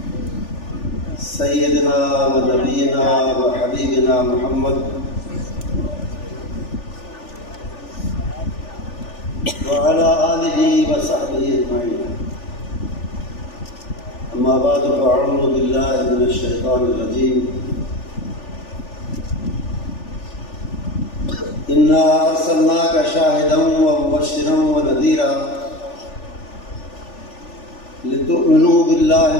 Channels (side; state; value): right; late; 3.4 ms